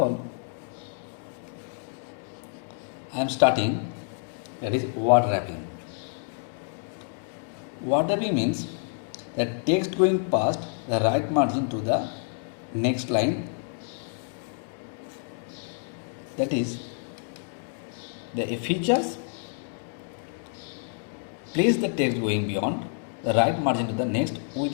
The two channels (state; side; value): silent; right; 59 dB below the other